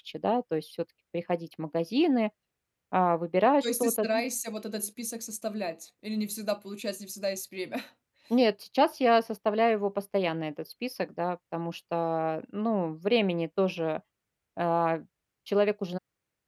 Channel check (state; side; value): identical; both; correlation 1.00